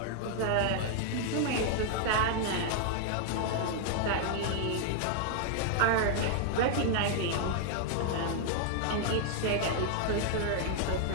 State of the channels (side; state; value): both; different; correlation 0.00